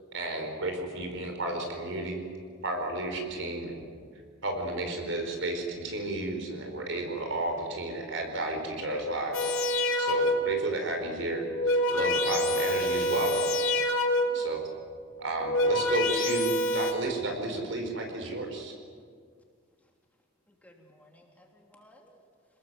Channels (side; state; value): both; normal; correlation 0.12